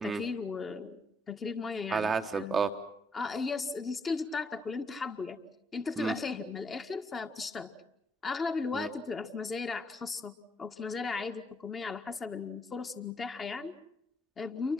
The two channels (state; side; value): normal; both; correlation 0.76